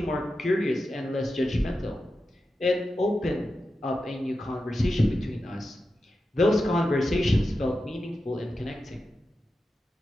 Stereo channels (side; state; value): both; normal; correlation 0.91